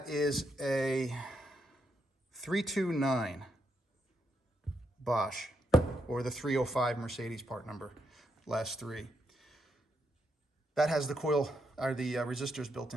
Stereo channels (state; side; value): normal; both; correlation 0.79